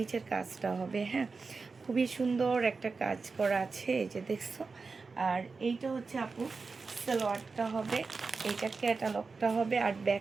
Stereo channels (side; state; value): left; quieter; 4.4 dB